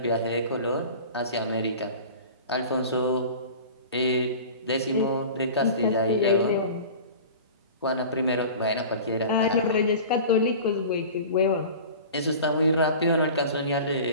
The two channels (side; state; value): both; inverted; correlation -0.38